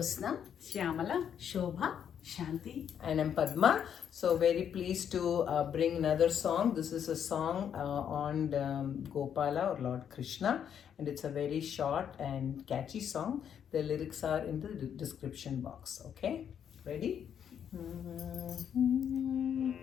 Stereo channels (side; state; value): right; quieter; 8.6 dB